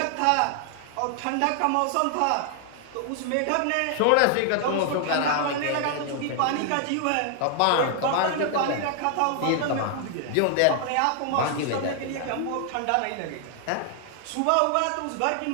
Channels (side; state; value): both; different; correlation 0.00